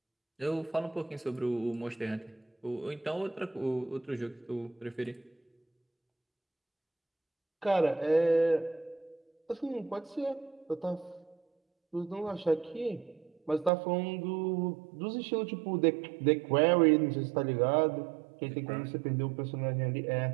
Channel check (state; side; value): drops out; left; at 13.7 s